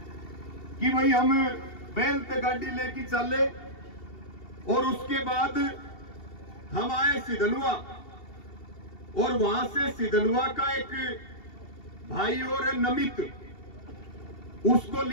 कि भाई हम बैल ते गाड़ी लेके चले और उसके बाद हम आए सिधनवा और वहां से सिधनवा का एक भाई और है नमित, उसको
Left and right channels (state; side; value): late; right; 2.7 ms